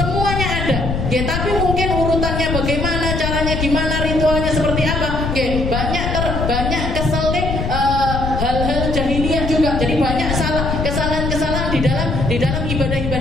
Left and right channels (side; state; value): left; noise; rumble, 2 dB below the sound